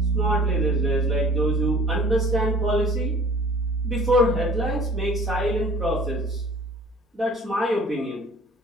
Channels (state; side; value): normal; both; correlation 0.48